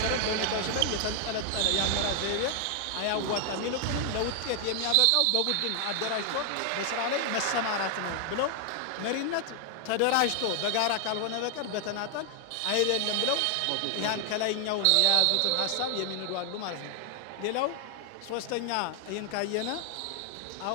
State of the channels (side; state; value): both; different; correlation 0.00